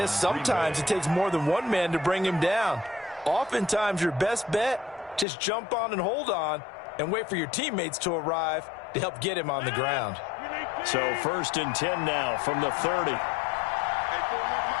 sometimes it takes more than one man to bring him down. Oftentimes, your best bet, just jump on and hold on and wait for your teammates to arrive to help get him on the ground. So 1st and 10 now from the 30.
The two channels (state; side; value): drops out; right; at 5.2 s